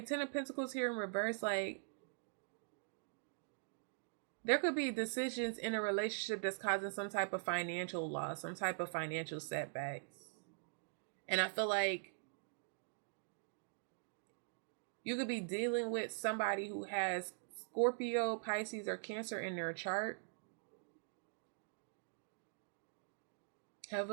of Pentacles here in reverse, like, there could be decisions in a relationship that's causing some type of financial loss, some type of financial setbacks. And I feel like you could be dealing with somebody who has Scorpio, Pisces, or Cancer in their chart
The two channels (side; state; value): left; silent; digital silence